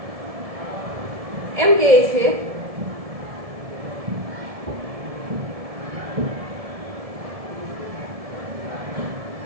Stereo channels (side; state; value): left; late; 1.7 ms